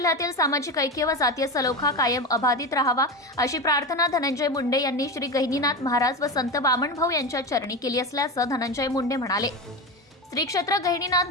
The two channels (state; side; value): normal; both; correlation 0.21